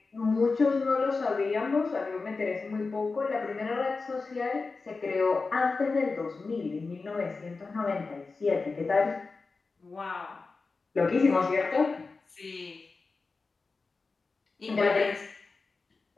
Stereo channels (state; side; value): quieter; right; 4.1 dB